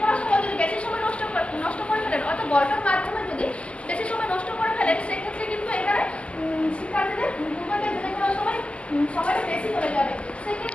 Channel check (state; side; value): late; right; 0.057 ms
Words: করার সময় যদি বেশি সময় নষ্ট করে ফেলেন অর্থাৎ গল্পের মাধ্যমে যদি বেশি সময় নষ্ট করে ফেলেন সেক্ষেত্রে কিন্তু এখানে শিক্ষার্থীদের পূর্বজ্ঞান যাচাই করার সময় সময়টা বেশি হয়ে যাবে।